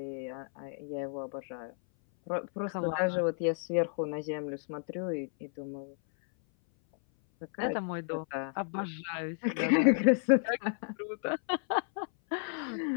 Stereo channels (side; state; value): right; silent; 56 dB below the other